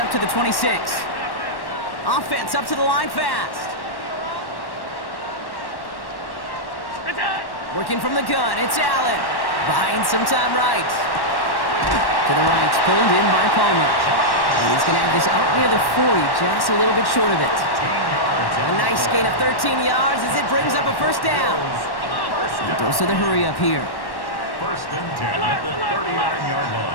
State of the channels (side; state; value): right; late; 1.1 ms